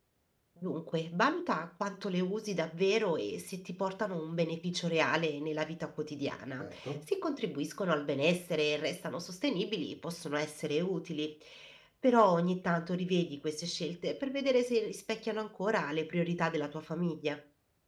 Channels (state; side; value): identical; both; correlation 1.00